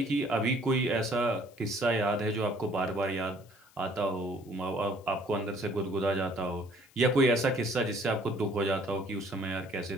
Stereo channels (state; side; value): noise; left; hiss, 28 dB below the sound